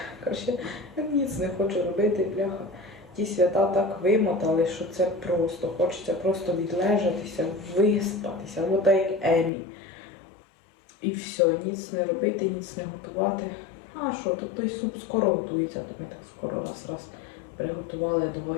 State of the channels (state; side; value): drops out; right; at 9.5 s